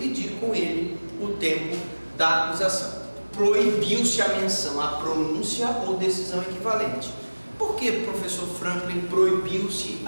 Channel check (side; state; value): both; inverted; correlation -1.00